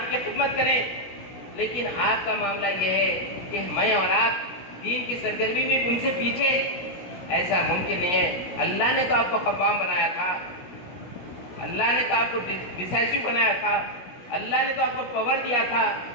کی خدمت کریں، لیکن آپ کا معاملہ یہ ہے کہ میں اور آپ دین کی سرگرمی میں ان سے پیچھے، ایسا ممکن نہیں ہے۔ اللہ نے تو آپ کو قوام بنایا تھا، اللہ نے تو آپ کو ڈیسائسو بنایا تھا، اللہ نے تو آپ کو پاور دیا تھا،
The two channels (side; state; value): right; late; 16 ms